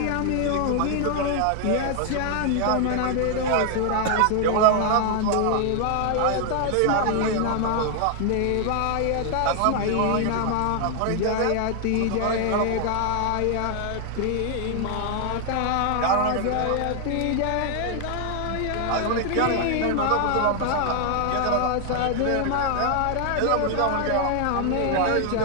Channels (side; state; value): both; different; correlation 0.00